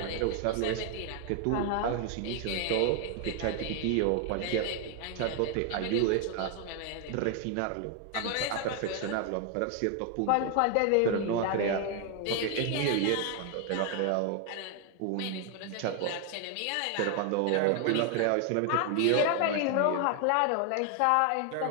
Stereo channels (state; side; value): different; both; correlation 0.00